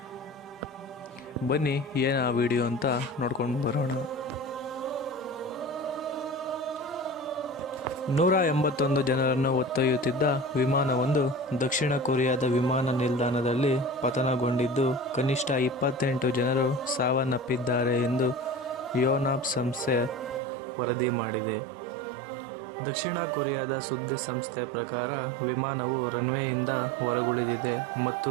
ಬನ್ನಿ ಏನು ಆ ವಿಡಿಯೋ ಅಂತ ನೋಡ್ಕೊಂಡು ಬರೋಣ. 181 ಜನರನ್ನು ಹೊತ್ತೊಯ್ಯುತ್ತಿದ್ದ ವಿಮಾನವೊಂದು ದಕ್ಷಿಣ ಕೊರಿಯಾದ ವಿಮಾನ ನಿಲ್ದಾಣದಲ್ಲಿ ಪತನಗೊಂಡಿದ್ದು ಕನಿಷ್ಠ 28 ಜನರು ಸಾವನ್ನಪ್ಪಿದ್ದಾರೆ ಎಂದು ಯೋನಾಪ್ ಸಂಸ್ಥೆ ವರದಿ ಮಾಡಿದೆ. ದಕ್ಷಿಣ ಕೊರಿಯಾದ ಸುದ್ದಿ ಸಂಸ್ಥೆ ಪ್ರಕಾರ ವಿಮಾನವು ರನ್ವೇಯಿಂದ ಹೊರಗುಳಿದಿದೆ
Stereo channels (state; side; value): drops out; left; at 20.4 s